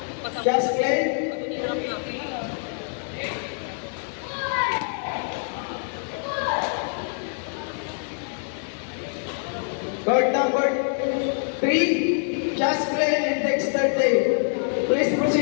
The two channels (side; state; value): right; silent; 62 dB below the other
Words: Jasmine. Court number 3, Jasmine and Dexter Day. Please